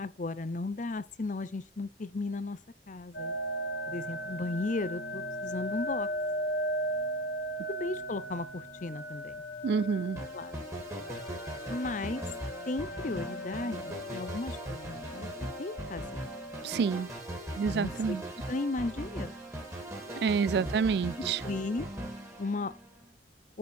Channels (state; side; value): normal; both; correlation 0.41